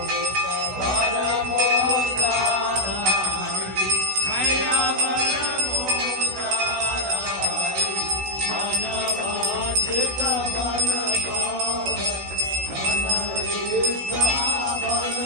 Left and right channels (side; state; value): left; late; 16 ms